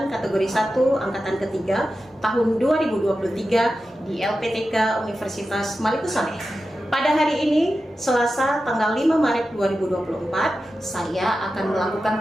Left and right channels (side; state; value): both; normal; correlation 0.92